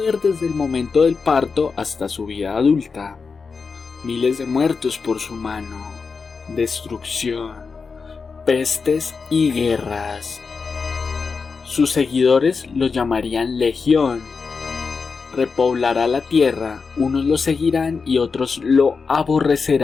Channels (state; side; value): quieter; right; 5.0 dB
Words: desde el momento del parto hasta su vida adulta, miles de muertos por su mano, destrucción, pestes y guerras. Sus seguidores lo llamarían Legión. Repoblará la tierra, unos lo seguirán y otros lo